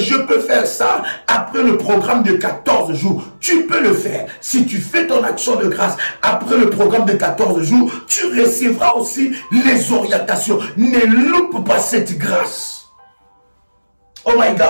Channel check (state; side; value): inverted; both; correlation -1.00